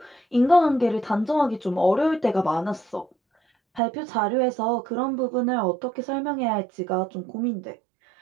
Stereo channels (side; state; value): left; drops out; at 3.8 s